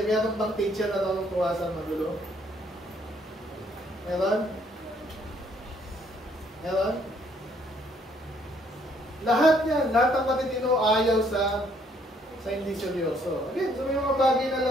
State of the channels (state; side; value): normal; both; correlation 0.66